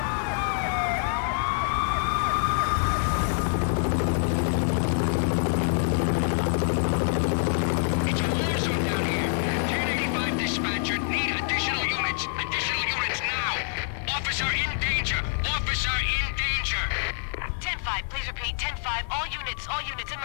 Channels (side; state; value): right; silent; digital silence